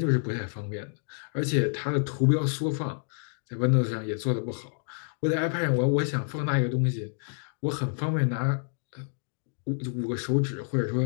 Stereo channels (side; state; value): right; silent; digital silence